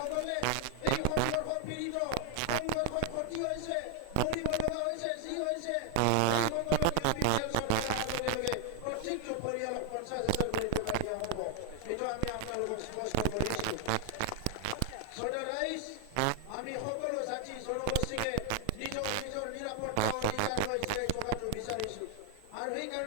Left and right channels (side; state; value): both; different; correlation 0.00